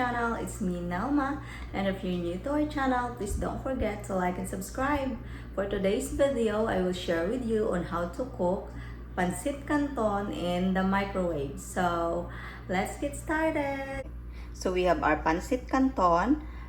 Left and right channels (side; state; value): both; identical; correlation 1.00